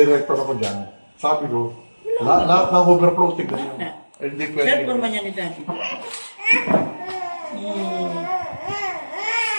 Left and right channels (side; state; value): both; inverted; correlation -1.00